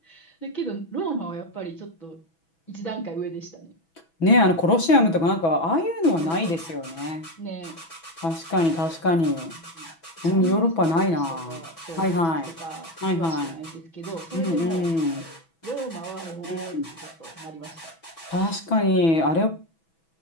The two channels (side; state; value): right; late; 6.1 ms